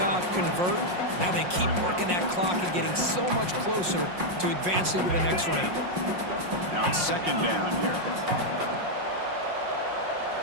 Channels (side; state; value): left; late; 5.6 ms